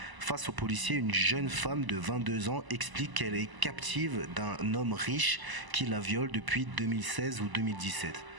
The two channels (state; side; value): late; left; 1.0 ms